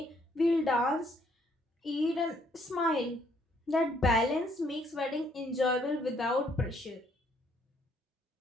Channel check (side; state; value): both; normal; correlation 0.68